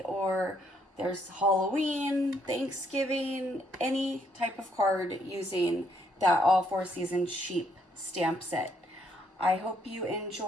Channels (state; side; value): normal; both; correlation 0.71